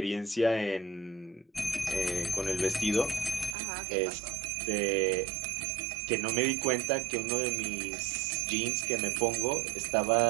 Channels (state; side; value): drops out; left; at 3.6 s